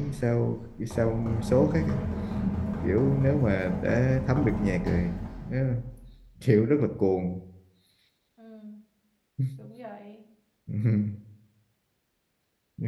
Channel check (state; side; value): identical; both; correlation 1.00